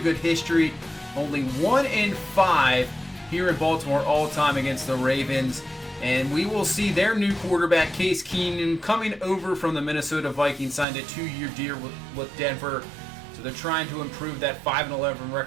history. Only 1-5 here in Baltimore all time against the Ravens. And we will see their new quarterback, Case Keenum, coming over from the Minnesota Vikings, signed a 2-year deal with Denver. So they're trying to improve that 5-11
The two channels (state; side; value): drops out; left; at 10.9 s